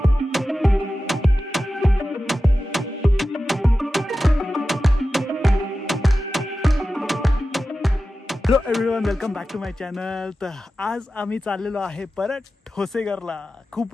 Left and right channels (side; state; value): both; normal; correlation 0.93